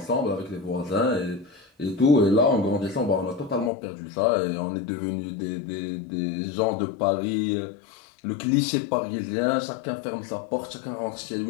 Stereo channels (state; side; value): drops out; right; at 3.7 s